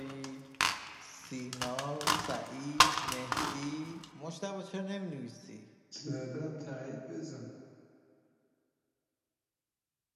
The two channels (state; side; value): identical; both; correlation 1.00